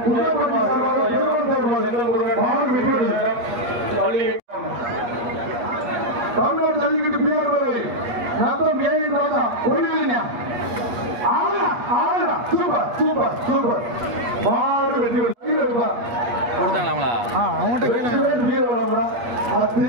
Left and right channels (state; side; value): late; left; 8.4 ms